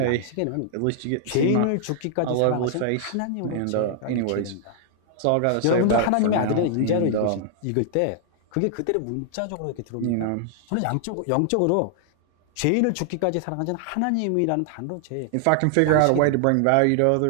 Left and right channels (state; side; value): different; both; correlation 0.00